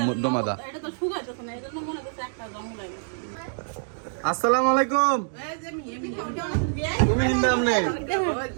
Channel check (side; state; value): left; silent; digital silence